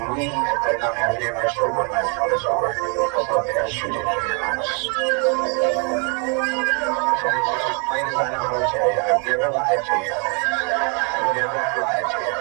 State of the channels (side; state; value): left; quieter; 36.9 dB